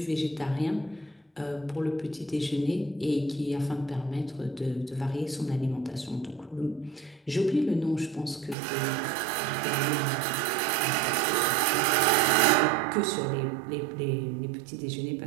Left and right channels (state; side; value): drops out; left; at 8.6 s